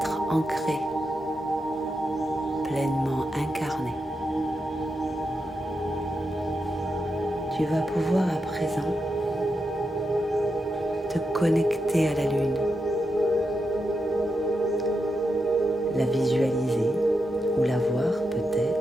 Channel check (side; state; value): both; normal; correlation 0.86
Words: ancrés, pleinement incarnés. Tu vas pouvoir à présent te connecter à la lune, la visualiser ou la voir